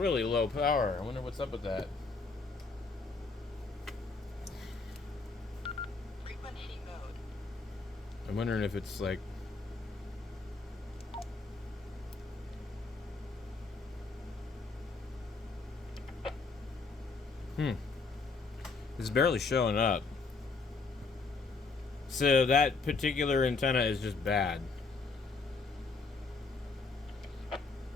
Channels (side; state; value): right; quieter; 4.1 dB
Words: low power. I wonder what's up with that. I'm wondering if it's like... It's barely showing up. So that particular antenna is just bad.